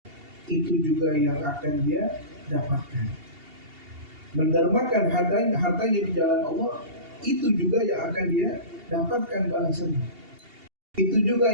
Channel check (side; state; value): left; late; 2.8 ms